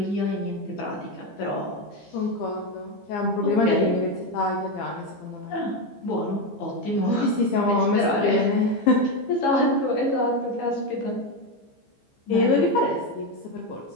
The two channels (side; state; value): right; late; 15 ms